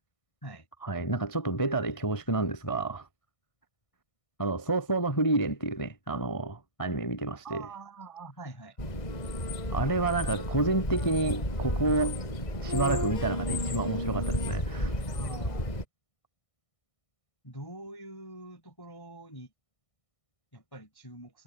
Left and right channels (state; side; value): late; right; 1.6 ms